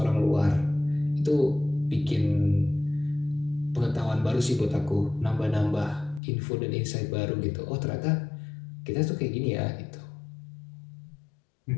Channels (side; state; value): right; drops out; at 6.2 s